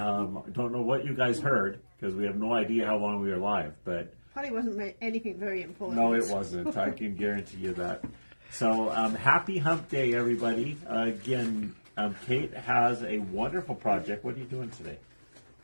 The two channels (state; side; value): inverted; both; correlation -1.00